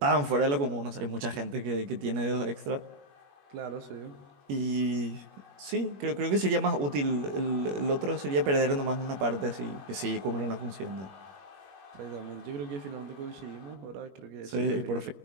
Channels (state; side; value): late; left; 21 ms